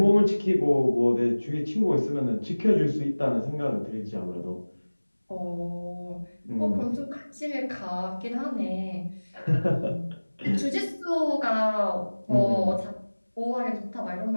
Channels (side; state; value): both; inverted; correlation -1.00